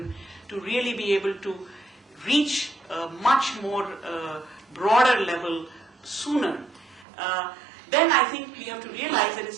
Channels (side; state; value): left; drops out; at 7.1 s